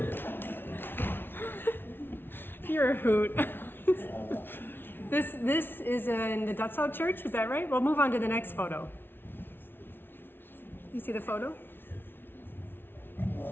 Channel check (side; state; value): right; late; 0.11 ms